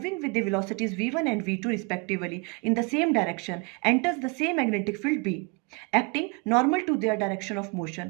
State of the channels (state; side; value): quieter; left; 30.4 dB